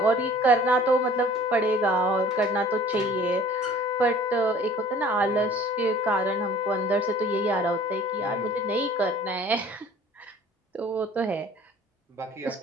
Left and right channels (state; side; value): normal; both; correlation 0.49